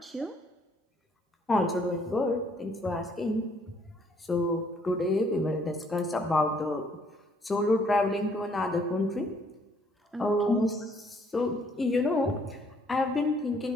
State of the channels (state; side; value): normal; both; correlation 0.65